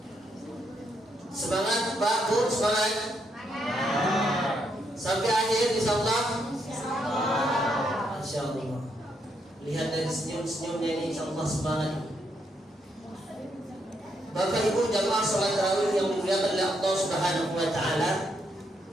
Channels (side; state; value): both; normal; correlation 0.77